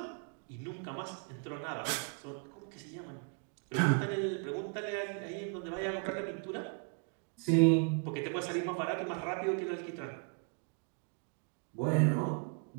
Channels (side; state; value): left; quieter; 38.8 dB